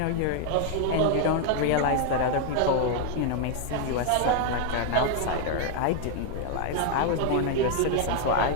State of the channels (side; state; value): both; different; correlation 0.00